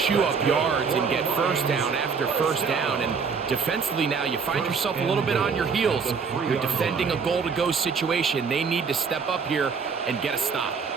up yards and get 1st down after 1st down. And defensively now, you find yourself a little bit on your heels. You're defending a goal-to-go situation. They need to step up here and get a stop.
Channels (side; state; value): left; quieter; 5.6 dB